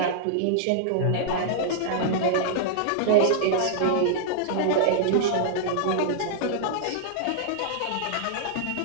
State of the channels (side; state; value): both; different; correlation -0.01